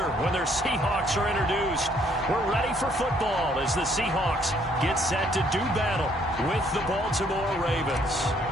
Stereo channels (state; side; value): normal; both; correlation 0.66